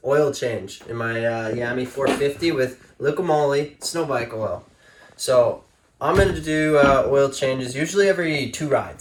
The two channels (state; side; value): identical; both; correlation 1.00